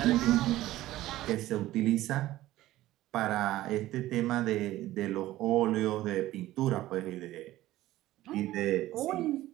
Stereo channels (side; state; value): left; quieter; 15.6 dB